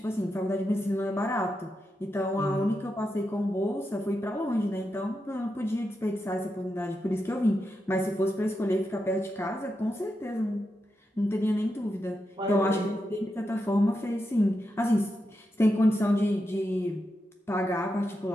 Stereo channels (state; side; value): normal; both; correlation 0.87